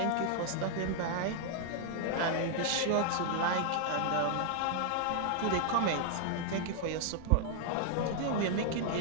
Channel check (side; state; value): both; different; correlation 0.00